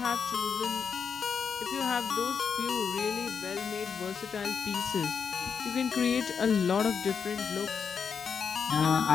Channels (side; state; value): right; quieter; 6.4 dB